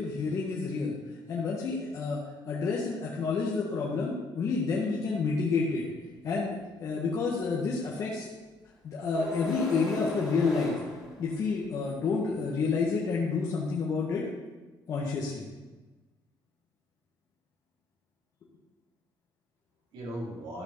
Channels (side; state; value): right; quieter; 3.9 dB